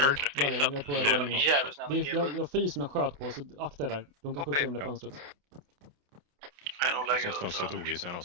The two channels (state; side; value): late; left; 28 ms